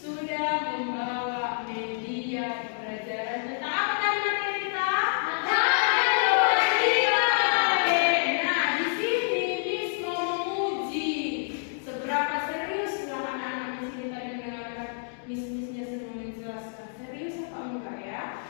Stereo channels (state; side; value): silent; right; digital silence